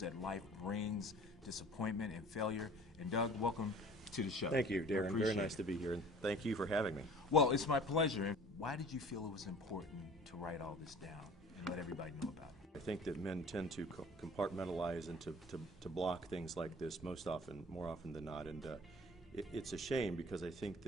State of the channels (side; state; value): both; normal; correlation 0.46